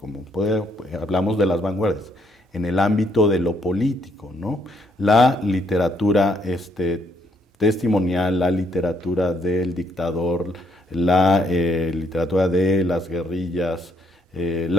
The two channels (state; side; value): normal; both; correlation 0.71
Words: hablamos de las vanguardias, en el ámbito de lo político, ¿no? La literatura testimonial, la literatura del dictador, la literatura de las guerrillas,